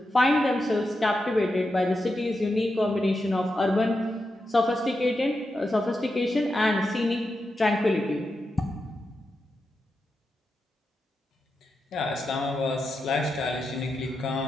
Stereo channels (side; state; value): both; normal; correlation 0.88